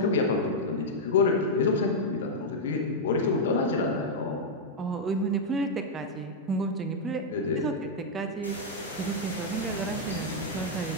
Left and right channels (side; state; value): both; normal; correlation -0.03